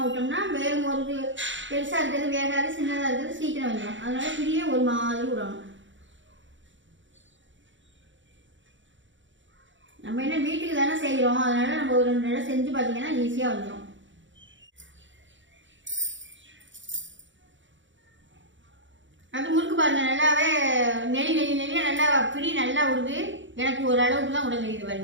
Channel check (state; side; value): late; left; 0.55 ms